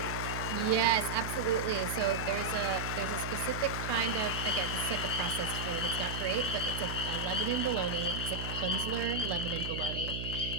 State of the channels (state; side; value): noise; right; hum, 5 dB below the sound